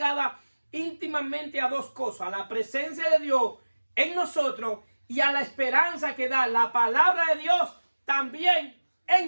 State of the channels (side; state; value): both; inverted; correlation -1.00